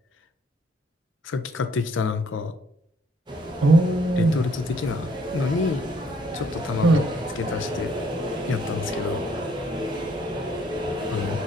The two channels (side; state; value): both; normal; correlation 0.65